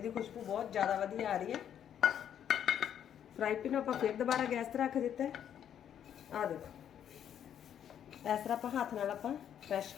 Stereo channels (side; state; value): right; quieter; 9.5 dB